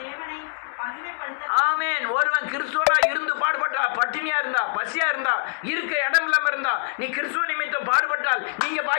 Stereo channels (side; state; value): right; silent; 62 dB below the other